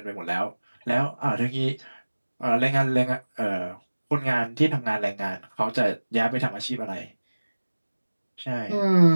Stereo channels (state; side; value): inverted; both; correlation -1.00